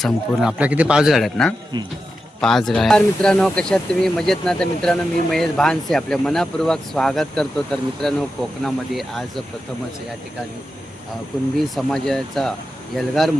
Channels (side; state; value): both; normal; correlation 0.89